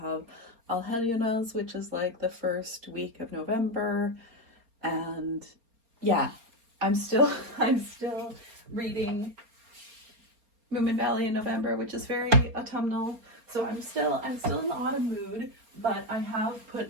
have Alheliunas, which is like the first week of November, and yeah, I'm still I'm still reading Moomin Valley in November, which is very autumnal. So I'm still in the autumn mood, but I have put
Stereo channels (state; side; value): late; left; 4.3 ms